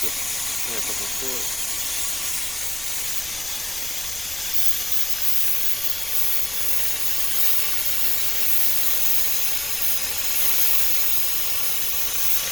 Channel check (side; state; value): left; noise; rumble, 21 dB below the sound